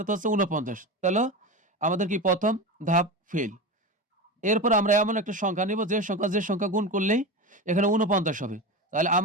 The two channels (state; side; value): normal; both; correlation 0.23